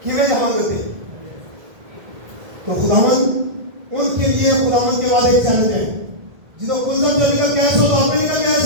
کیویں جہاں ہوتے. تو خداوند ان کے لیے خداوند کے وعدے چیلنج ہے. جدو کلزم جو نکل کیس ہو تو آپ نکل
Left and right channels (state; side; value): late; left; 1.7 ms